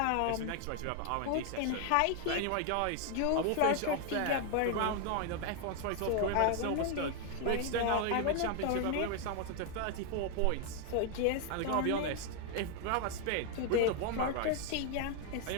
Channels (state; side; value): different; both; correlation 0.00